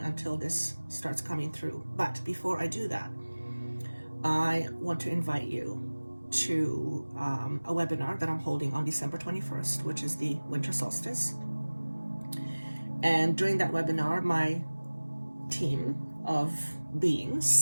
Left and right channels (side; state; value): both; inverted; correlation -1.00